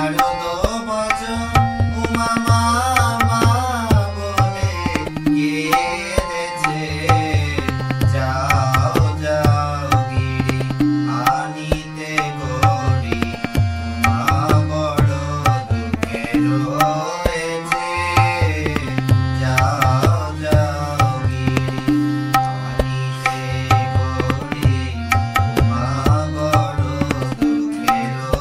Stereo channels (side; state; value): both; identical; correlation 1.00